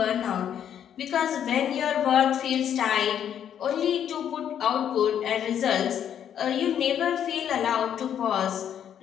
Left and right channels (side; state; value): right; quieter; 9.4 dB